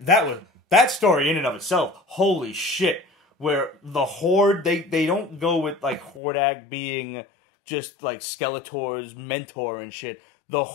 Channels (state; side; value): drops out; right; at 6.2 s